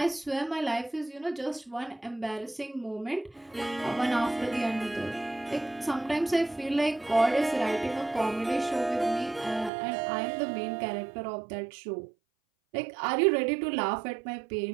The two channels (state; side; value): drops out; left; at 9.7 s